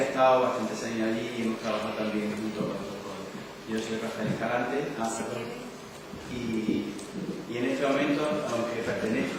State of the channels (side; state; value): both; identical; correlation 1.00